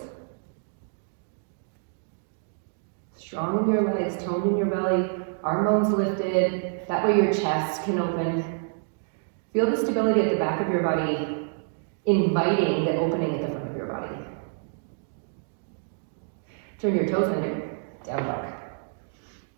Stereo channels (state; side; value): silent; left; digital silence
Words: Strong in your legs, toned in your belly, arm bones lifted. That way your chest can open. Feel the stability at the back of your body, inviting the opening at the front of your body. Turn your toes under, down dog.